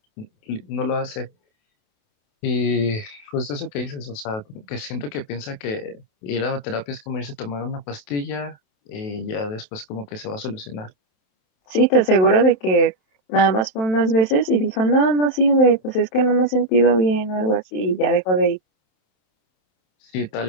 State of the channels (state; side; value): late; right; 28 ms